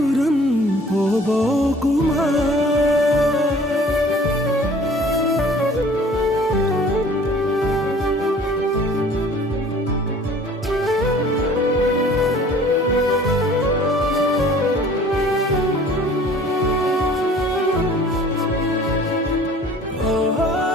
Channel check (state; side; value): normal; both; correlation 0.50